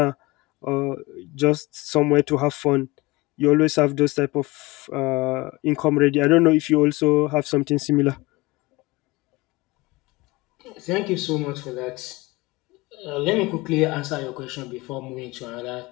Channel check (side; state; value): right; quieter; 22.3 dB